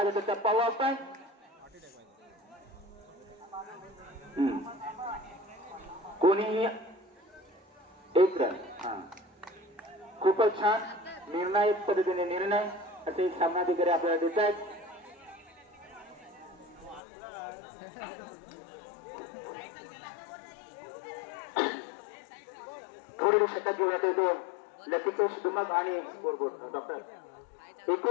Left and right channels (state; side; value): drops out; right; at 17.0 s